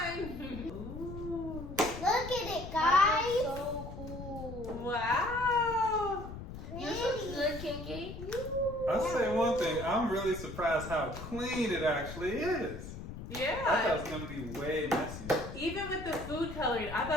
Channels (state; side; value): noise; left; rumble, 10 dB below the sound